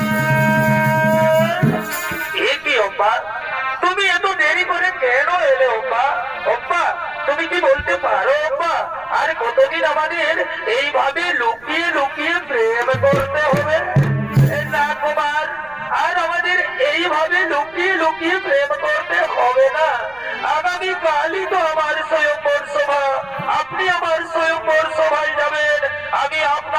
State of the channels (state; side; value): noise; right; rumble, 27 dB below the sound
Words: এ কি অব্বা, তুমি এত দেরি করে কেন এলে অব্বা? অব্বা, তুমি কি বলতে পারো অব্বা, আর কতদিন আমাদের এইভাবে লুকিয়ে লুকিয়ে প্রেম করতে হবে? না কুমার, আর আমাদের এইভাবে লুকিয়ে লুকিয়ে প্রেম করতে হবে না। আগামী কালই তো আমার স্বয়ংবর সভা, আপনি আমার স্বয়ংবর সভায় যাবেন। আমি